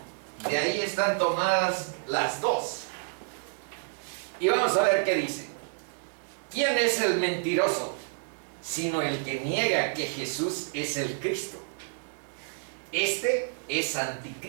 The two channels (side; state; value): left; silent; 57 dB below the other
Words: De ahí están tomadas las dos. Y vamos a ver qué dice. ¿Quién es el mentiroso? sino el que niega que Jesús es el Cristo. Este es